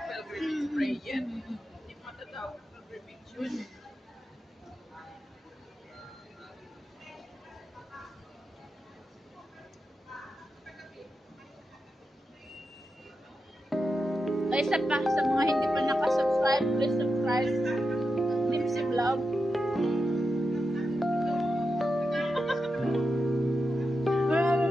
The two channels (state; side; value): normal; both; correlation 0.88